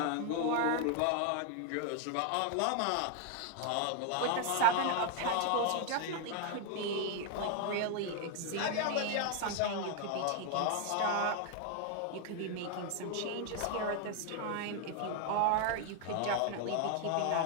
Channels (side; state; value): both; different; correlation 0.00